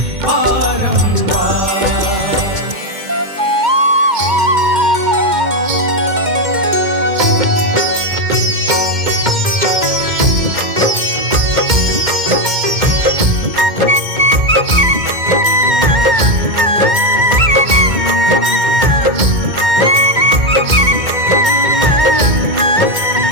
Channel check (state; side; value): late; left; 2.1 ms